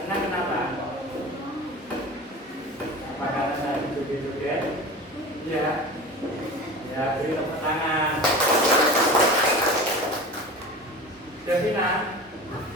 Ya, ya, beri tepuk tangan. Devina,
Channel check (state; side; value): normal; both; correlation 0.34